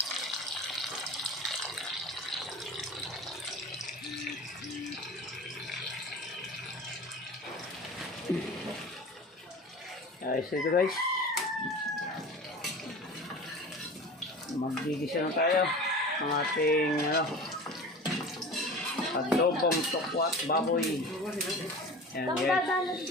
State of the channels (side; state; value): both; normal; correlation 0.36